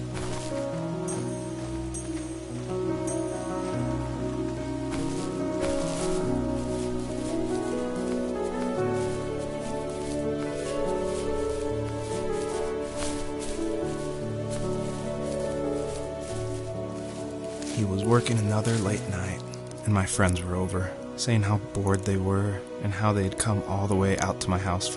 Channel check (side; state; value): both; identical; correlation 1.00